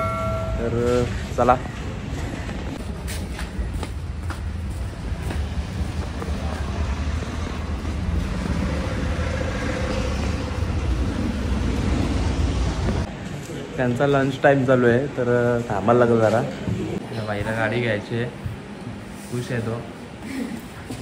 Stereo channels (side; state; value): both; identical; correlation 1.00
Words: तर चला। त्यांचा लंच टाईम चालू आहे, तर थांबायला लागलं जरा। बाईला गाडी घ्यायची आहे, खुश आहे तो।